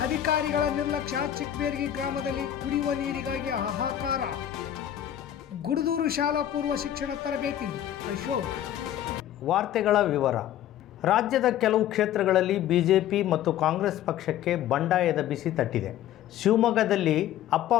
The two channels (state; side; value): quieter; right; 11.4 dB